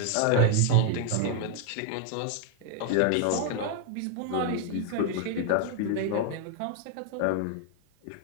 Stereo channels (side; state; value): both; different; correlation 0.00